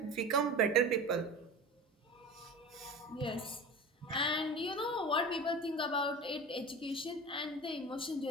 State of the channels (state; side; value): normal; both; correlation 0.32